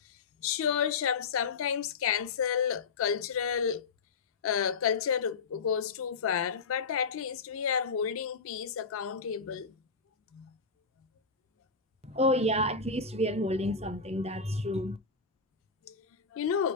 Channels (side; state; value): right; quieter; 4.8 dB